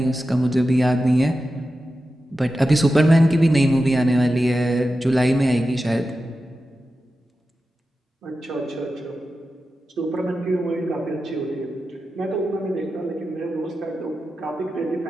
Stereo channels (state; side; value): normal; both; correlation 0.92